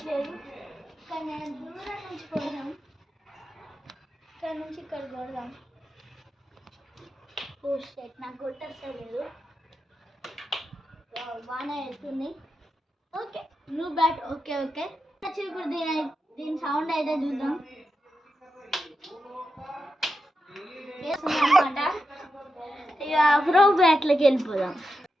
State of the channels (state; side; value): normal; both; correlation 0.88